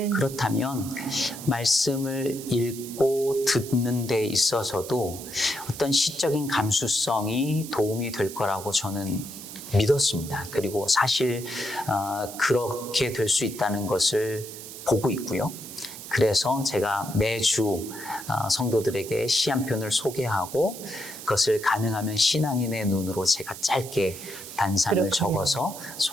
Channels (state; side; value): noise; right; hiss, 12 dB below the sound